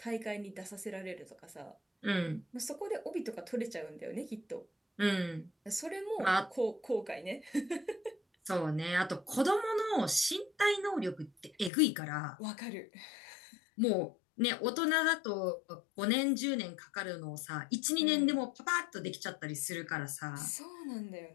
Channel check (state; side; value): drops out; right; at 11.7 s